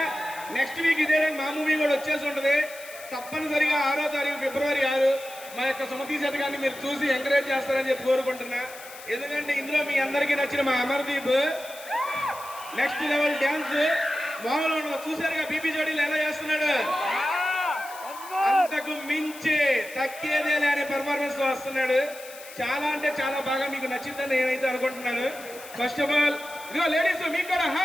నెక్స్ట్ వీక్ ఇదే మా మూవీ కూడా వచ్చేసి ఉంటుంది. తప్పనిసరిగా 6వ తారీఖు ఫిబ్రవరి 6 మా యొక్క సుమతి శతకాన్ని మీరు చూసి ఎంకరేజ్ చేస్తారని చెప్పి కోరుకుంటున్నా. ఎందుకంటే ఇందులో మీ అందరికీ నచ్చిన మా అమర్దీప్ నెక్స్ట్ లెవెల్ డ్యాన్స్ మామూలు ఉండదు. చూసారుగా బీపీ జోడీలు ఎలా చేస్తున్నాడు, అంతకు మించి తగ్గేదేలే అనే పర్ఫార్మెన్స్ తో వస్తున్నాడు. చాలా అంటే చాలా బాగా మీకు నచ్చిందని నేనైతే అనుకుంటున్నాను. ఫస్ట్ ఆఫ్ ఆల్ ఇదిగో లేడీస్ మీకు కూడా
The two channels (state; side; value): noise; left; hiss, 16 dB below the sound